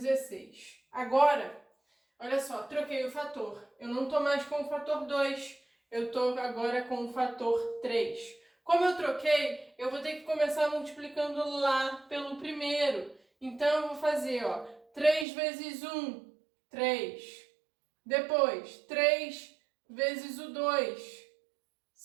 Agora, olha só, troquei o fator. Eu não estou mais com o fator 2, eu estou agora com o fator 3. Como eu troquei, eu vou ter que começar multiplicando lá pelo primeiro. Então, eu vou fazer, ó, 3 vezes 1, 3. Depois, 3 vezes o 2,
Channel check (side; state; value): left; drops out; at 15.2 s